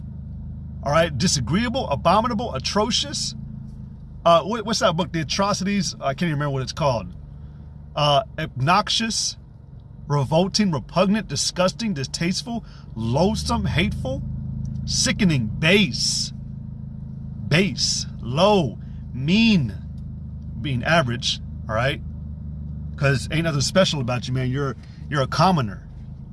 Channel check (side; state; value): both; identical; correlation 1.00